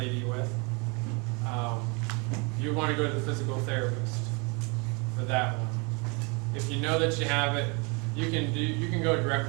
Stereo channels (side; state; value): left; quieter; 31.0 dB